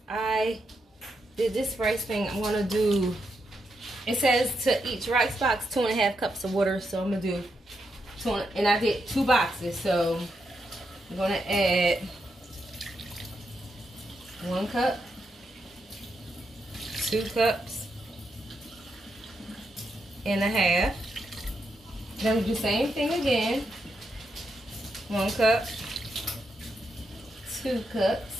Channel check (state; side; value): normal; both; correlation 0.83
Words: I did this rice thing, I'm gonna do, it says to each rice box 2.5 cups of water, so I'm gonna do and I did 2 boxes, so I'm gonna add 1 cup, 2 cups and a half. Then we do the same thing again. 1 cup, 2